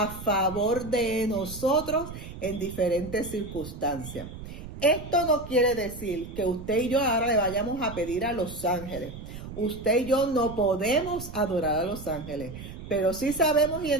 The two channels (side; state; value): right; noise; rumble, 12 dB below the sound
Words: favor de nosotros en diferentes circunstancias. Esto no quiere decir que usted y yo ahora le vayamos a pedir a los ángeles. Usted y yo no podemos adorar a los ángeles, pero sí sabemos y